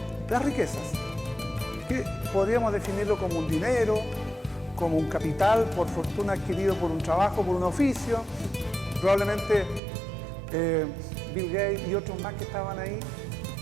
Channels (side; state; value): left; drops out; at 9.8 s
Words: las riquezas, que podríamos definirlo como un dinero, como un capital por fortuna adquirido por un trabajo, por un oficio. Probablemente Bill Gates y otros más que estaban ahí